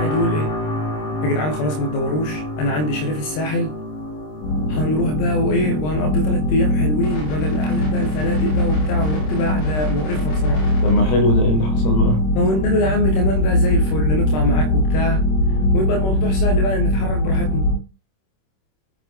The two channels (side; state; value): right; late; 26 ms